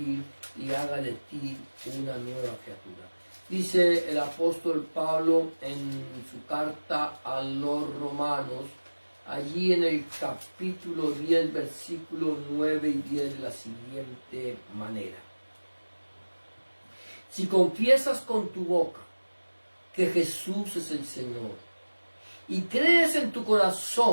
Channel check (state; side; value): inverted; both; correlation -1.00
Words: y haga de ti una nueva criatura. Dice el apóstol Pablo en su carta a los Romanos, allí en el capítulo 10, versículos 9 y 10, de la siguiente manera. Si confiesas con tu boca que Jesús es el Señor y crees en tu